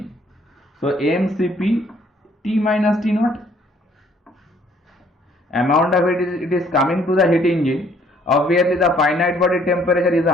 So mCp T minus T naught, amount of it is coming to the heat engine. Obviously the finite body temperature is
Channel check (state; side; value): normal; both; correlation 0.62